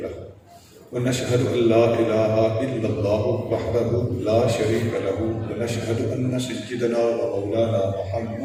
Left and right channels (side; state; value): both; identical; correlation 1.00